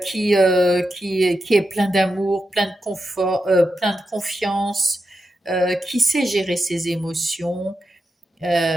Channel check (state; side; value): normal; both; correlation 0.88